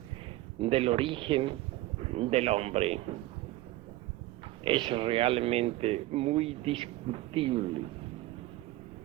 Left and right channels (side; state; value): left; quieter; 17.4 dB